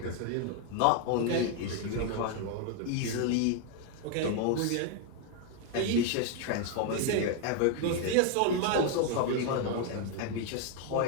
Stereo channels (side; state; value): both; different; correlation 0.00